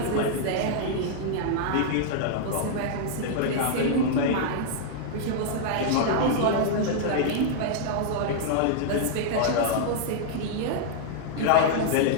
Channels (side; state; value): both; different; correlation -0.01